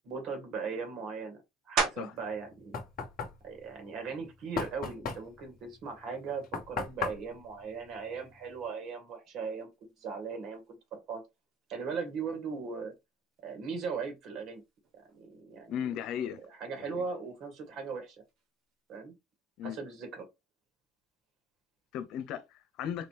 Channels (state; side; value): normal; both; correlation 0.46